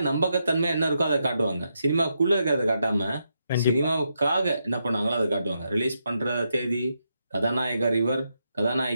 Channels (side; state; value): both; inverted; correlation -0.82